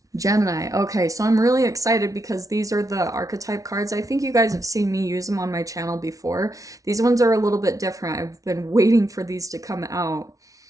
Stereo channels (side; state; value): left; late; 0.17 ms